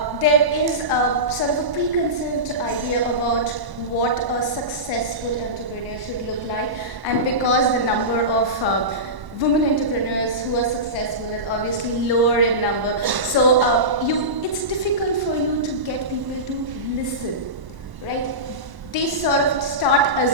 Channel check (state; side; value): late; left; 1.1 ms